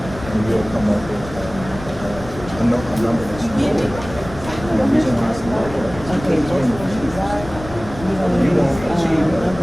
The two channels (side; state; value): left; noise; rumble, 13 dB below the sound